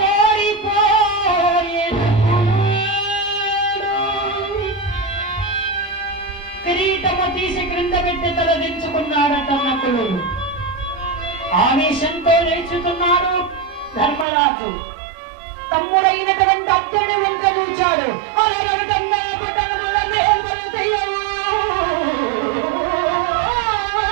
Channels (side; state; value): left; drops out; at 14.2 s